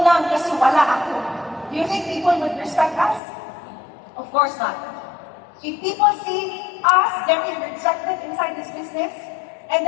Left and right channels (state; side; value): drops out; right; at 3.2 s